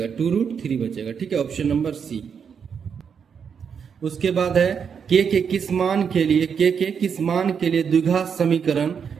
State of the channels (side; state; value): left; quieter; 6.9 dB